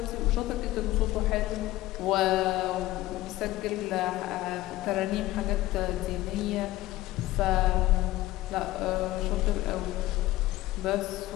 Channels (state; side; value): quieter; right; 16.8 dB